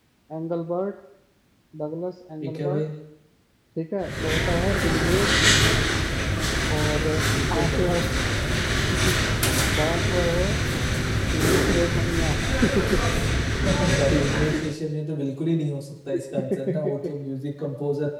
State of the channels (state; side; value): identical; both; correlation 1.00